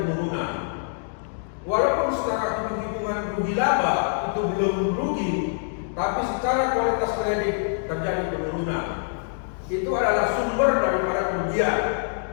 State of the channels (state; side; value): silent; right; digital silence